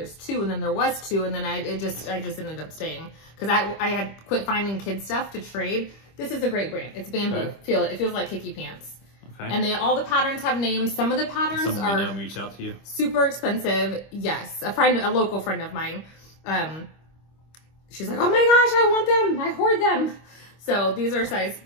two, and then there was two, and then I just ended up staying because I had quit finding kid stuff to trade. This is a great brand. It's bamboo. Okay. Feel it. It feels like Kiki Pants. Okay. And all the patterns have names. Some of the patterns Someone are we know reached out to you. super expensive. Yes, a local friend of mine. She's like, oh my gosh, I want them. I hoard them. So these are size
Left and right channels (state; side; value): late; right; 25 ms